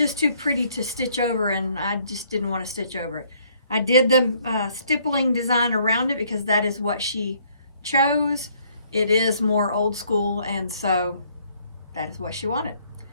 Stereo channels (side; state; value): both; inverted; correlation -0.65